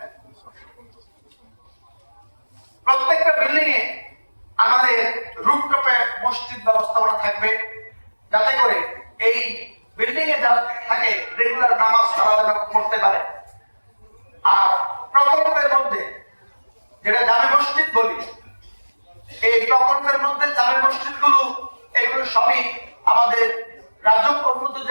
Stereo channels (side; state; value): both; inverted; correlation -1.00